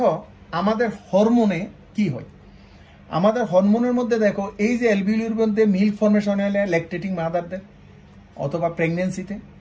আমাদের হরমোনে কি হয়। আমাদের হরমোনের মধ্যে দেখো এই যে অ্যালভিউলির মধ্যে মিল্ক ফর্মেশন হলে ল্যাকটেটিং মাদারদের অথবা প্রেগনেন্সিতে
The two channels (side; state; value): both; identical; correlation 1.00